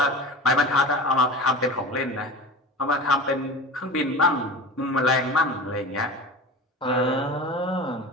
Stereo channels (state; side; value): normal; both; correlation 0.32